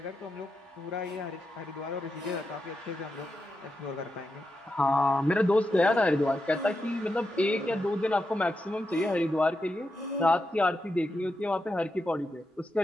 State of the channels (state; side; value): normal; both; correlation 0.87